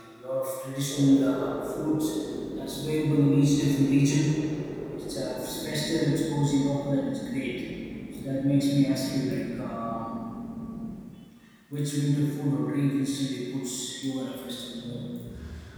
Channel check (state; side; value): identical; both; correlation 1.00